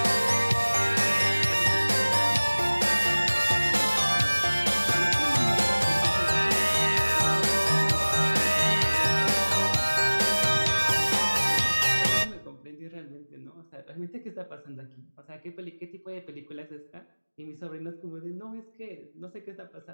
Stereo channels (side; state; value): both; inverted; correlation -1.00